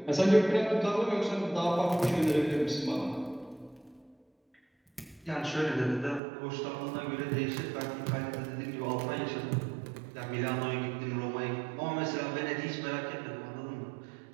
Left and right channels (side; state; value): left; drops out; at 6.2 s